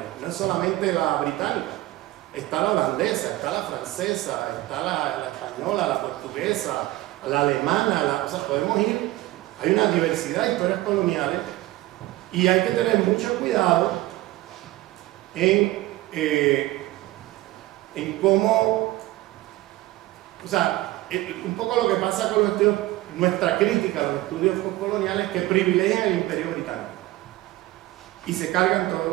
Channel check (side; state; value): left; quieter; 17.4 dB